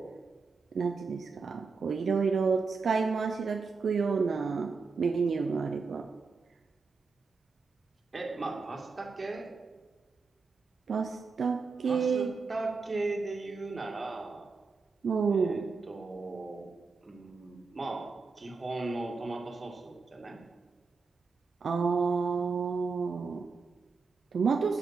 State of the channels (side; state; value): left; quieter; 4.6 dB